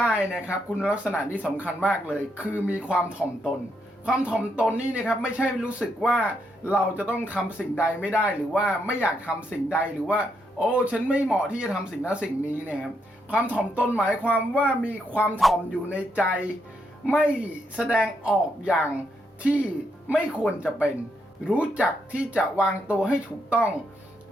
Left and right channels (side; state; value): both; normal; correlation 0.79